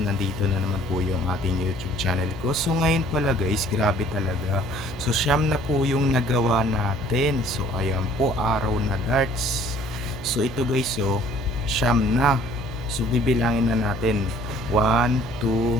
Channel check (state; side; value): noise; right; hum, 13 dB below the sound